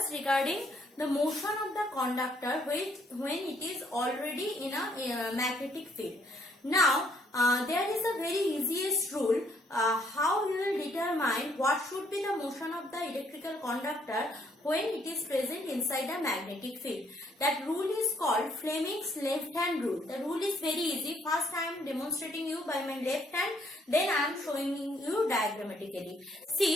regarding the motion of the conductor when it is already in a magnetic field. Now, there is a very easiest rule how you will determine what should be the motion of the electrical conductor when it is present inside a magnetic field. That rule is called Fleming's left hand rule. The rule is very easy. First I am demonstrating you by my left hand, then I am showing you diagrammatically.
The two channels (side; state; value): both; normal; correlation 0.68